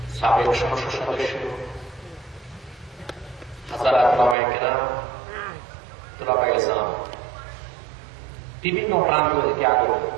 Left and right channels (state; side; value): drops out; left; at 4.4 s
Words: সাবেক সংসদ সদস্য, হাজারাত ওলামায়ে কেরাম, তুলাবায়ে ইসলাম, বিভিন্ন প্রান্ত থেকে আগত